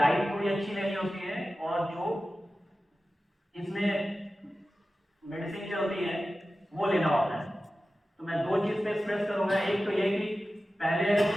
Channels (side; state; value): both; normal; correlation 0.94